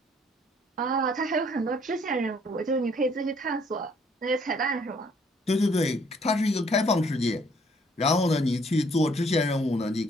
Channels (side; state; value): both; normal; correlation 0.63